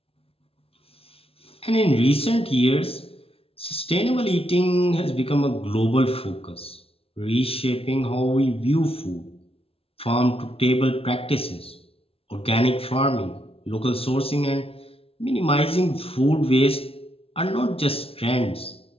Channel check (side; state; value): right; late; 0.27 ms